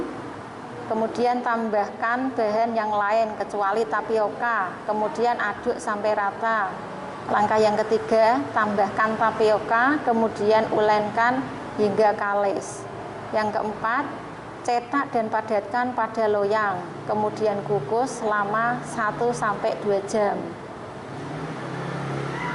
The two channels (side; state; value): both; identical; correlation 1.00